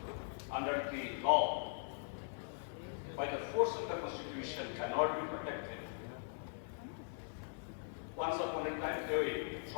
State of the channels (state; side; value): silent; right; 51 dB below the other